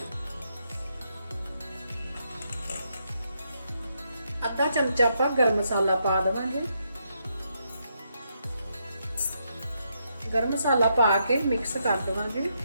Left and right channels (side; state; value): both; inverted; correlation -0.79